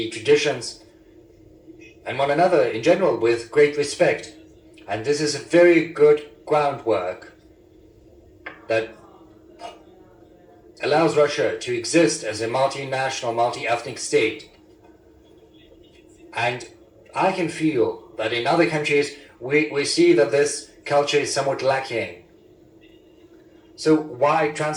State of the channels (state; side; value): identical; both; correlation 1.00